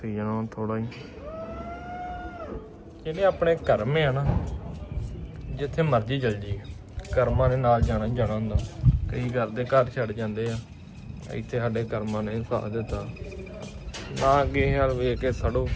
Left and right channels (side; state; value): both; identical; correlation 1.00